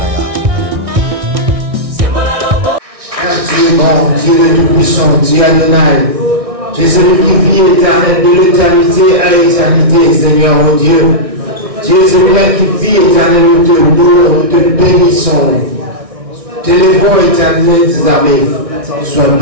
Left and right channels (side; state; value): left; late; 1.6 ms